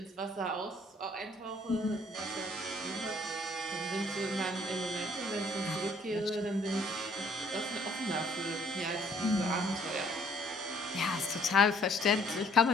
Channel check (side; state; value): both; normal; correlation 0.62